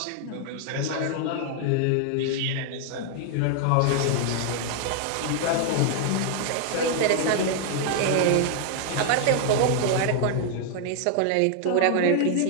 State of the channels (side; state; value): both; different; correlation 0.00